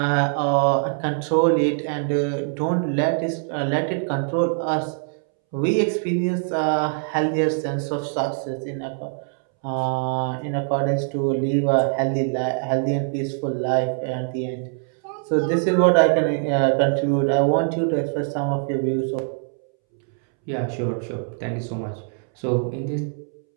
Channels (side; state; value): left; silent; 63 dB below the other